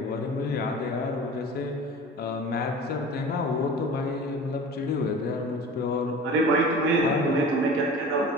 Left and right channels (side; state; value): both; normal; correlation 0.38